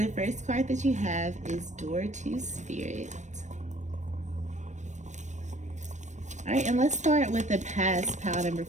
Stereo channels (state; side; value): late; left; 0.34 ms